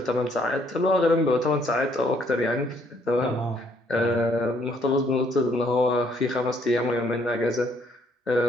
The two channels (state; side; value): normal; both; correlation 0.67